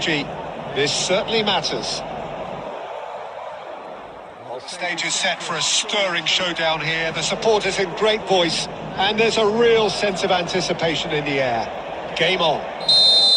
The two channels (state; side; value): identical; both; correlation 1.00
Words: This certainly matters. The stage is set for a stirring showdown here. The supporters in great voice, and there's a real sense of anticipation in the air. Game on.